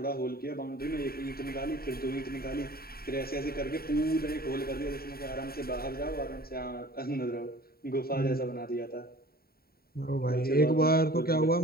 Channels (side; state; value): right; late; 0.44 ms